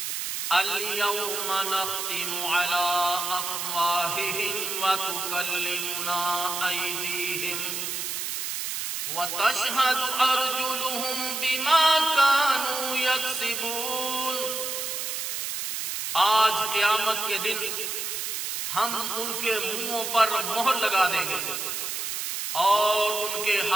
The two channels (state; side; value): noise; right; hiss, 3 dB below the sound